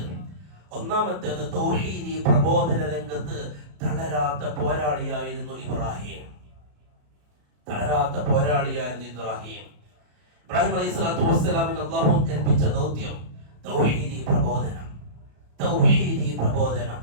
ഒന്നാമത്തേത് തൗഹീദി പ്രബോധന രംഗത്ത് തളരാത്ത പോരാളിയായിരുന്നു ഇബ്രാഹിം. ഇബ്രാഹിം അലൈഹിസ്സലാത്തു വസ്സലാമിന് അല്ലാഹു ഏൽപ്പിച്ച ദൗത്യം തൗഹീദി പ്രബോധനം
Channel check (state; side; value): late; left; 34 ms